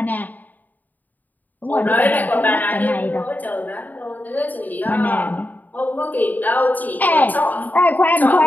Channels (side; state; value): right; late; 0.083 ms